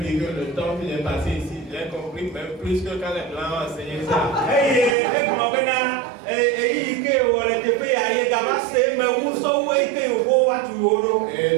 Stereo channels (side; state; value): left; drops out; at 5.0 s